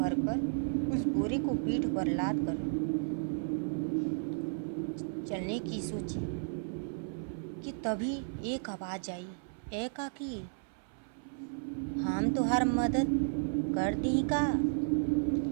उस बोरे को पीठ पर लाद कर चलने की सोची कि तभी एक आवाज़ आई, ए काकी, हम तुहार मदद कर दी का,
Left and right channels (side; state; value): left; silent; 55 dB below the other